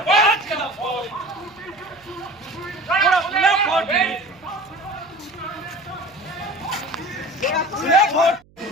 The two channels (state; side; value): noise; right; hum, 30 dB below the sound